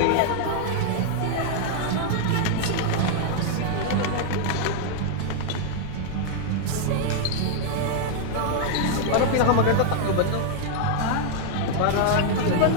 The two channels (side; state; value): both; different; correlation 0.00